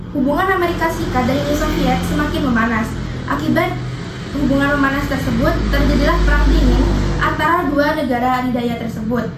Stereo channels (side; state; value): both; identical; correlation 1.00